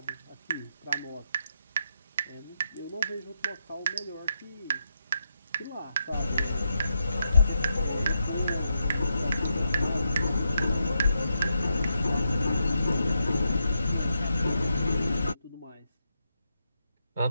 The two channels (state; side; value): inverted; both; correlation -0.84